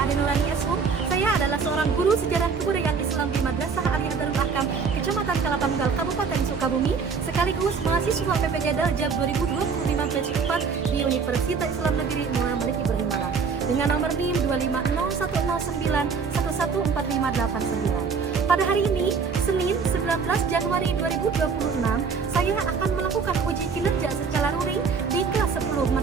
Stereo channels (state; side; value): quieter; left; 5.5 dB